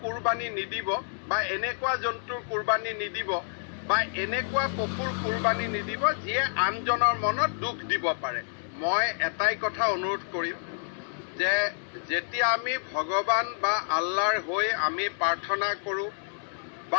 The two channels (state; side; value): silent; right; digital silence